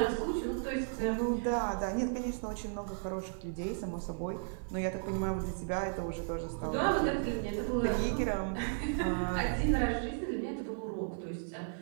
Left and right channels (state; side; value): silent; left; 55 dB below the other